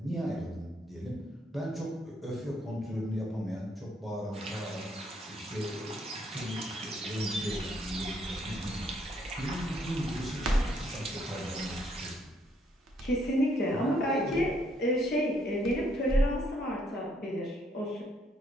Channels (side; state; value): both; normal; correlation 0.70